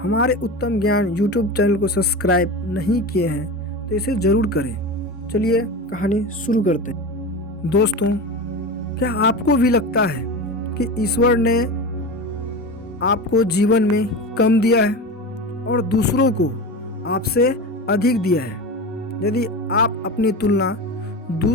हमारे उत्तम ज्ञान यूट्यूब चैनल को सब्सक्राइब नहीं किए हैं तो इसे ज़रूर करें। चलिए कहानी शुरू करते हैं। दोस्तों, क्या आपको भी लगता है कि ईश्वर ने आपको जीवन में कम दिया है और दूसरों को आपसे अधिक दिया है? यदि आप अपनी तुलना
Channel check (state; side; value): normal; both; correlation 0.26